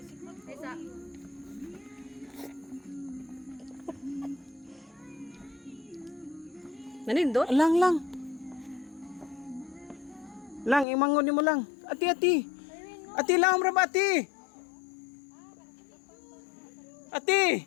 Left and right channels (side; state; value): right; drops out; at 10.9 s